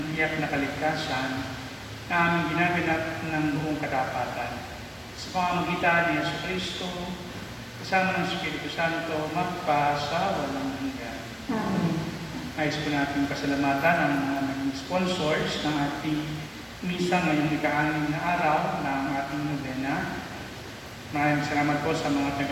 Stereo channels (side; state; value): both; identical; correlation 1.00